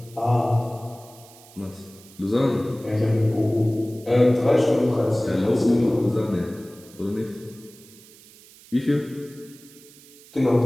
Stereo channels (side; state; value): right; noise; hiss, 23 dB below the sound